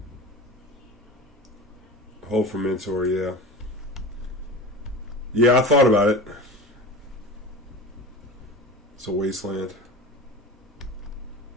Hope for Mentor, yeah. Yeah, I thought about it. It's a wasteland.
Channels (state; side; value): normal; both; correlation 0.31